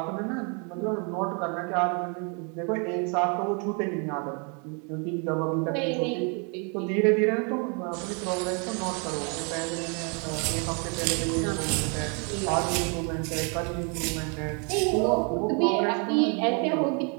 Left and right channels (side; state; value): left; quieter; 36.3 dB